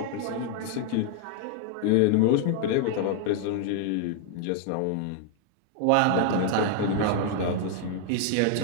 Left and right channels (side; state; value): both; different; correlation 0.00